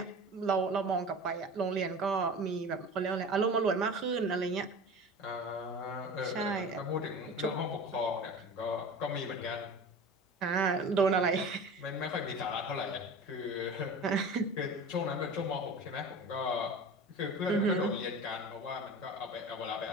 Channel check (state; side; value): normal; both; correlation 0.35